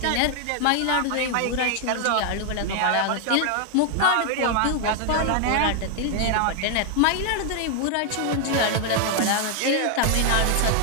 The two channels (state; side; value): different; both; correlation 0.00